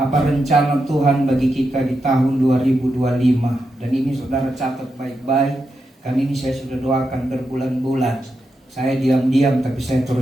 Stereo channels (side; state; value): both; normal; correlation 0.86